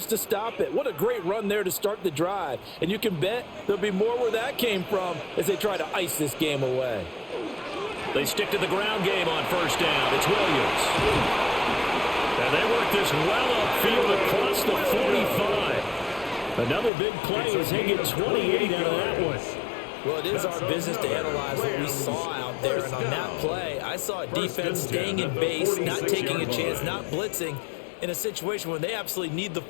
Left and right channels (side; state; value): right; drops out; at 16.9 s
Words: to stop it. What a great run there to start the drive. And you can bet there'll be more where that came from as they try to ice this game away. They stick to the ground game on first down. It's Williams. And they work this well upfield across the 45. Another big play as they get 28 out of that one. Well, it is our business to analyze what we saw out there. And on that play, I saw a defense staying in base, not taking a chance, not blitzing in a situation where they absolutely need the